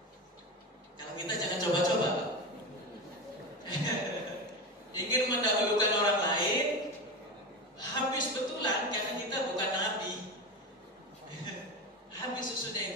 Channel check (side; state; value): both; normal; correlation 0.22